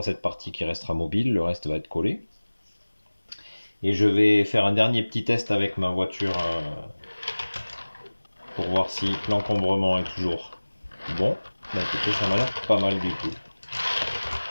cette partie qui restera mobile, le reste va être collé. Et je vais faire un dernier petit test avec ma voiture pour voir si l'encombrement est toujours bon. Bah écoutez, ça m'a l'air pas mal du tout.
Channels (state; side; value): inverted; both; correlation -1.00